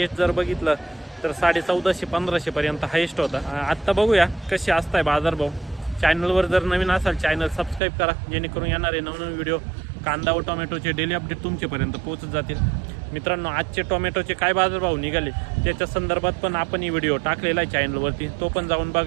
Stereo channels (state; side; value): drops out; left; at 7.8 s